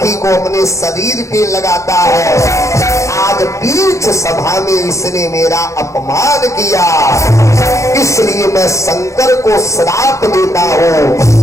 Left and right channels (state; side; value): late; right; 0.15 ms